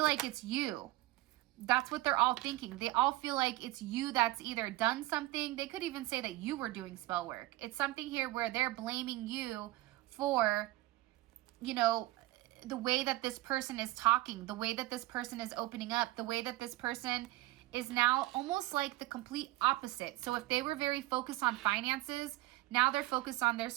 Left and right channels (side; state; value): left; quieter; 18.2 dB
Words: like it's you. That's what they're all thinking. They all feel like it's you that's either done something. They could even say that you were doing spell work. It's something here where they're blaming you for, you know, the way that this person is talking, the way that this person is opening up, the way that this person is now almost like the complete opposite. So if they were very focused on finances, now they're focused on their